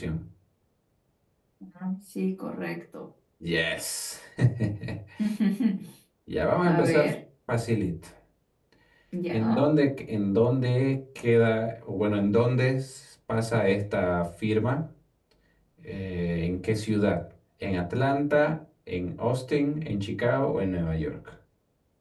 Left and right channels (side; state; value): both; identical; correlation 1.00